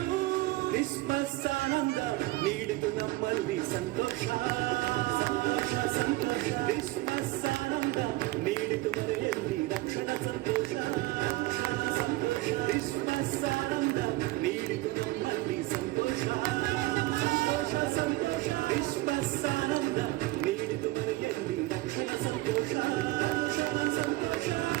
ಕ್ರಿಸ್ಮಸ್ ಆನಂದ ನೀಡಿತು ನಮ್ಮಲ್ಲಿ ಸಂತೋಷ, ಸಂತೋಷ ಸಂತೋಷ. ಕ್ರಿಸ್ಮಸ್ ಆನಂದ ನೀಡಿತು ಮನೆಯಲ್ಲಿ ರಕ್ಷಣಾ ಸಂತೋಷ, ಸಂತೋಷ. ಕ್ರಿಸ್ಮಸ್ ಆನಂದ ನೀಡಿತು ನಮ್ಮಲ್ಲಿ ಸಂತೋಷ, ಸಂತೋಷ ಸಂತೋಷ. ಕ್ರಿಸ್ಮಸ್ ಆನಂದ ನೀಡಿತು ಮನೆಯಲ್ಲಿ ರಕ್ಷಣಾ ಸಂತೋಷ, ರಕ್ಷಣಾ ಸಂತೋಷ.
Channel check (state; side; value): quieter; left; 18.9 dB